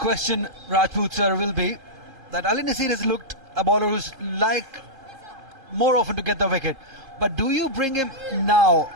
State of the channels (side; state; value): left; late; 2.5 ms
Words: Rajput sir, will be that Ali Nasir has looked a bowler who's like more often to get the wicket. But do you bring him now